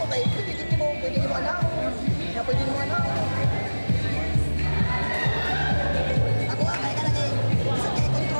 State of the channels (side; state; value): both; inverted; correlation -1.00